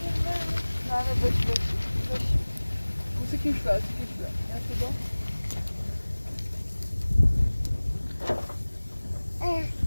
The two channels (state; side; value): inverted; both; correlation -1.00